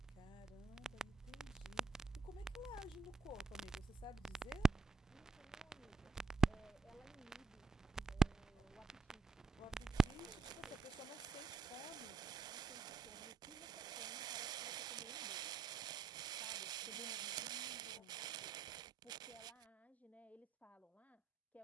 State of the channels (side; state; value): left; quieter; 4.3 dB